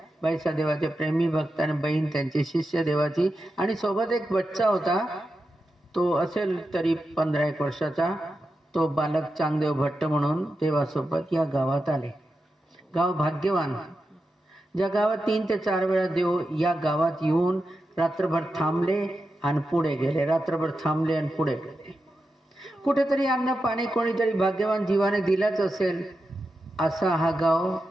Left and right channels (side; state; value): both; normal; correlation 0.89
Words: बाईसा देवाचे प्रेमी भक्त आणि बहीण त्यांची शिष्य देवाची, आणि सोबत एक बच्चा होता. तो असेल तरी 15-1 वर्षाचा. तो बालक चांगदेव भट्ट म्हणून देवासोबत या गावात आले. गाव भाग्यवान. ज्या गावात 3 ते 4 वेळा देव या गावात येऊन रात्रभर थांबले आणि पुढे गेले, रात्रभर थांबले आणि पुढे गेले. कुठेतरी अन्न पाणी कोणीतरी भाग्यवान जीवाने दिलाच असेल असा हा गाव